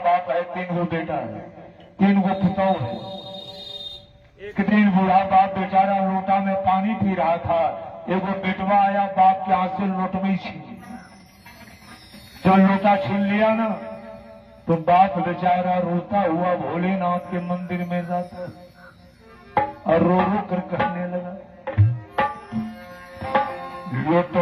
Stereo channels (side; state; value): both; identical; correlation 1.00